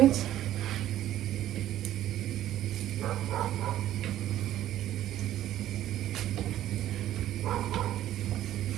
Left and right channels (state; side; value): quieter; left; 12.8 dB